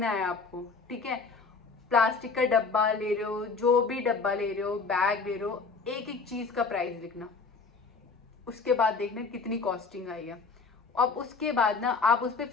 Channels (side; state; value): right; quieter; 4.5 dB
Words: है आपको, ठीक है। प्लास्टिक का डब्बा ले रहे हो, जो भी डब्बा ले रहे हो, बैग ले रहे हो, एक एक चीज का प्राइस लिखना, उसके बाद देखना कितनी कॉस्टिंग आई है। अब उसके बाद ना आप उस पर